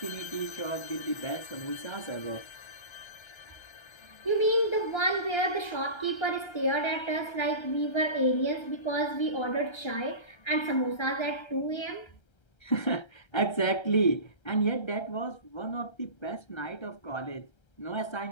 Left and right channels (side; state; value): right; late; 1.3 ms